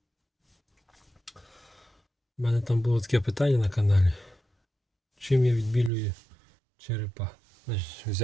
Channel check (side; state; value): left; drops out; at 5.9 s